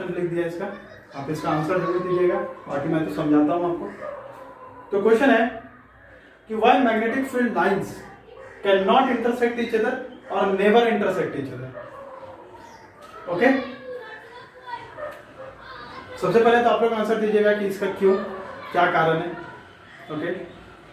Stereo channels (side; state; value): both; identical; correlation 1.00